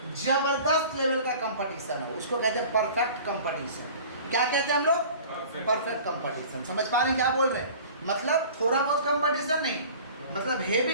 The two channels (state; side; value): inverted; both; correlation -0.43